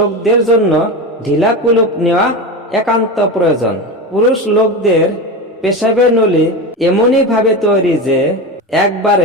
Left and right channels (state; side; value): normal; both; correlation 0.22